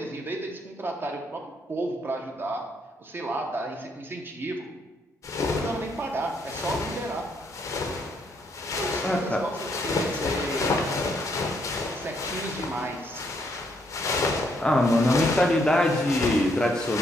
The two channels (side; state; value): both; normal; correlation 0.73